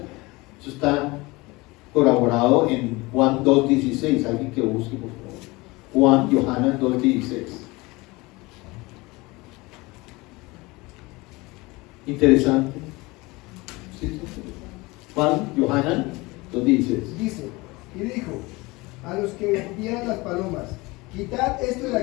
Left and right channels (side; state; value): right; quieter; 23.0 dB